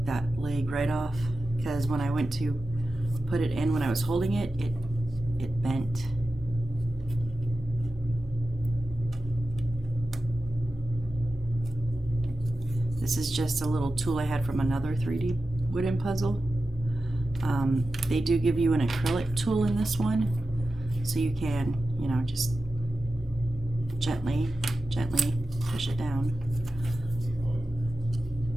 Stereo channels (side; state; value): both; normal; correlation 0.93